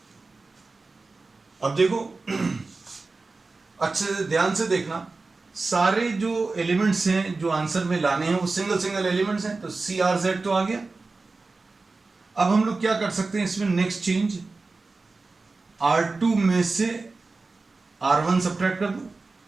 अब देखो अच्छे से ध्यान से देखना, सारे जो एलिमेंट्स हैं जो आंसर में लाने हैं वो सिंगल सिंगल एलिमेंट्स हैं। तो सी आर जेड तो आ गया। अब हम लोग क्या कर सकते हैं इसमें, नेक्स्ट चेंज, R2 में से R1 सब्ट्रैक्ट कर दो,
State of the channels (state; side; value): quieter; left; 3.7 dB